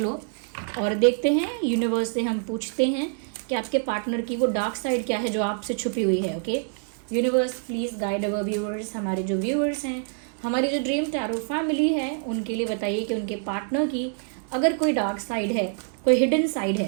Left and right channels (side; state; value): left; silent; 61 dB below the other